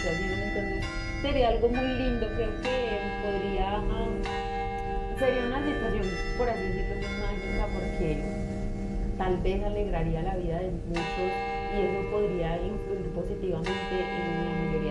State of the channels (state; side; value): identical; both; correlation 1.00